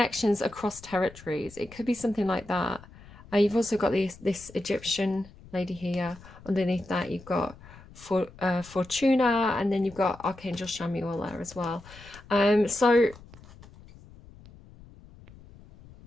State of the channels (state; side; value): noise; left; rumble, 21 dB below the sound